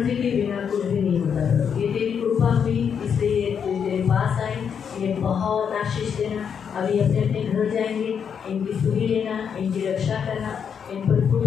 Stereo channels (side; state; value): right; quieter; 7.3 dB